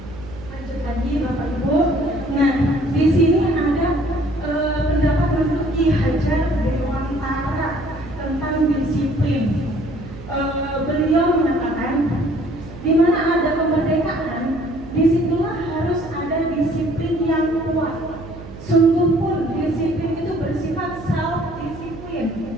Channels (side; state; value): right; noise; hum, 15 dB below the sound